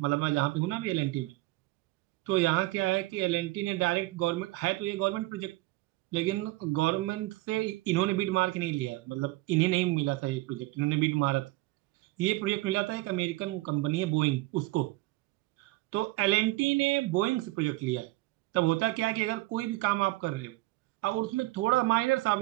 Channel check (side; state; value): left; quieter; 20.3 dB